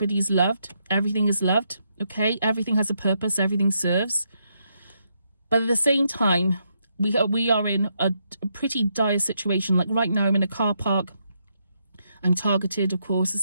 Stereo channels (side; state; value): both; inverted; correlation -0.79